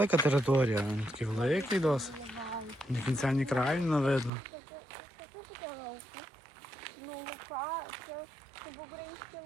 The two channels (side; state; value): left; drops out; at 4.3 s